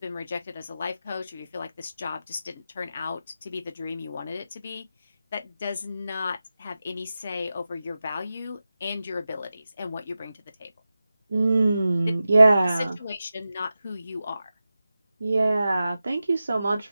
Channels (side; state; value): both; inverted; correlation -0.93